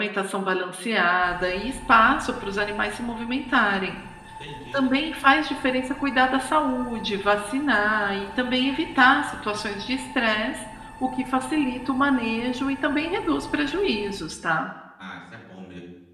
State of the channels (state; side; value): identical; both; correlation 1.00